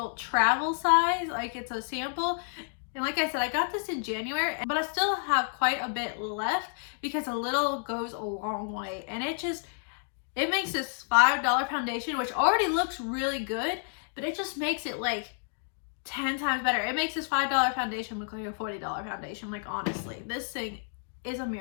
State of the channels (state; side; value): silent; right; digital silence